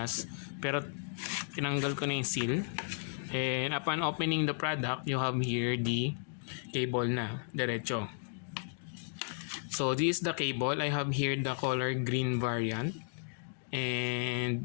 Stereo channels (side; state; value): right; silent; digital silence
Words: pero tinanggal ko na yung seal. And upon opening the product, you have here the cable na diretso. So this is the cable. I have here the color green variant, and